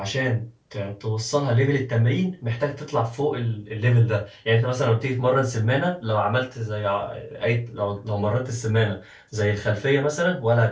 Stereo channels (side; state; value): both; identical; correlation 1.00